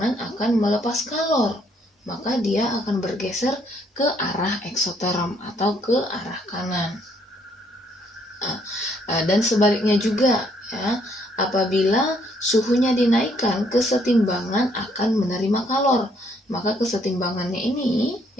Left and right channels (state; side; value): normal; both; correlation 0.68